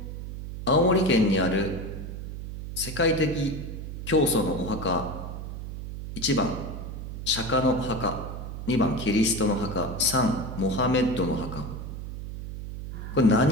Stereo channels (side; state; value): right; noise; hum, 8 dB below the sound